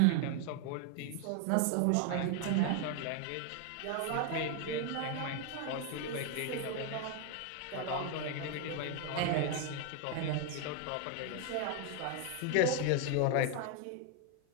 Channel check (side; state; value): both; different; correlation 0.01